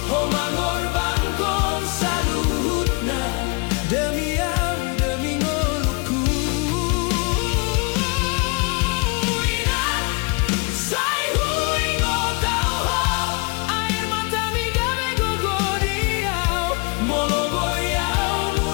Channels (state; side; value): quieter; right; 30.8 dB